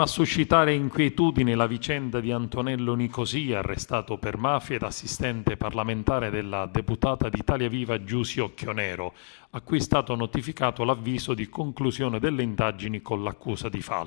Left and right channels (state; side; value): silent; right; digital silence